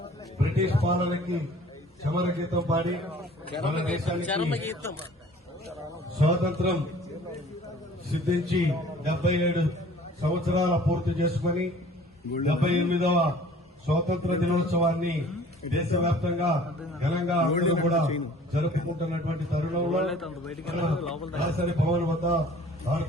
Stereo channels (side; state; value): both; normal; correlation 0.50